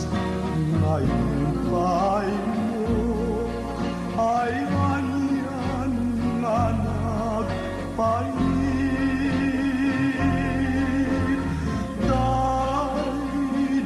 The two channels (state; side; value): identical; both; correlation 1.00